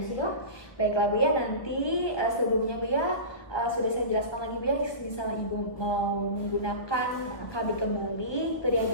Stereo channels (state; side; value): late; right; 1.1 ms